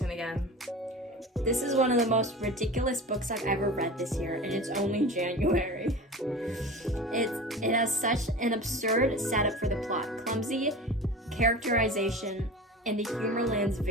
again. This is one of the most ridiculous books I've ever read this year, and it's only January. It has such an absurd setup for the plot, clumsy characterization, and the humor lands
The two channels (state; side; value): normal; both; correlation 0.33